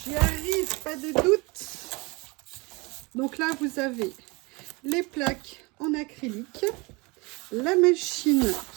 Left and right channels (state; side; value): quieter; left; 26.7 dB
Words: j'y arrive, pas de doute. Donc là, vous avez les plaques en acrylique, la machine